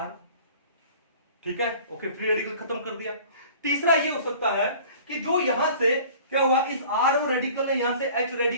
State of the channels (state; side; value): inverted; both; correlation -0.47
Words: ठीक है। ओके, फ्री रेडिकल खत्म कर दिया। तीसरा ये हो सकता है कि जो यहां से क्या हुआ, इस आर रेडिकल ने यहां से एच